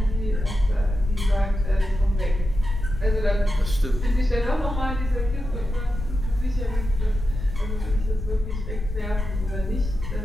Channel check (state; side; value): noise; left; rumble, 6 dB below the sound